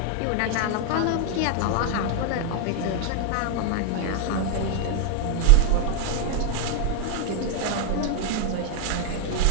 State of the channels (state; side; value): different; both; correlation 0.00